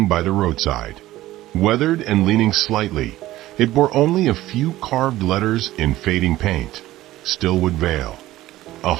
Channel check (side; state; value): left; quieter; 15.9 dB